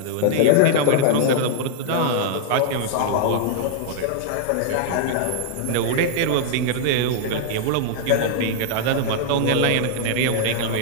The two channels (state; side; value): different; both; correlation -0.01